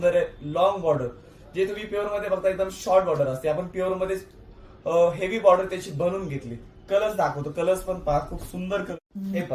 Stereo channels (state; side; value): identical; both; correlation 1.00